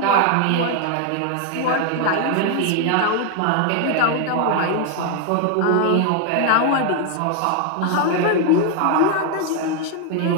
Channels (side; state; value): both; different; correlation 0.01